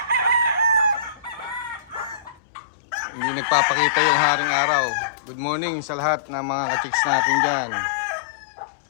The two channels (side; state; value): right; drops out; at 2.4 s